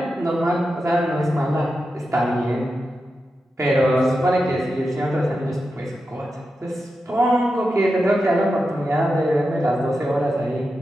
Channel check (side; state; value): both; normal; correlation 0.90